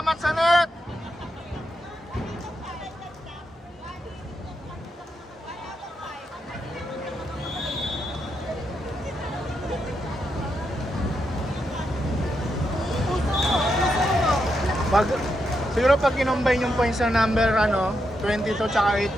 sa net! Pag, siguro pag kinombine yung points ng number 22 tsaka 8,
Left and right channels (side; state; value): both; normal; correlation 0.83